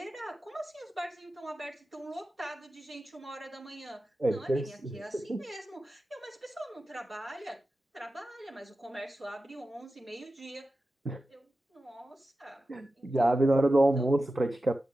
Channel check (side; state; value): both; normal; correlation 0.93